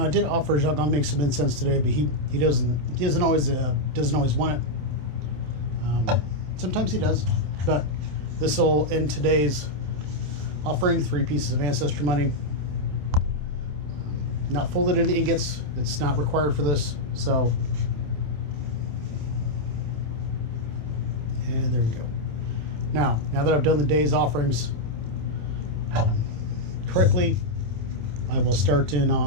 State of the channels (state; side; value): late; left; 27 ms